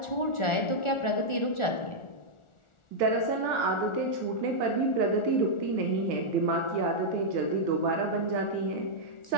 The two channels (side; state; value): right; late; 1.4 ms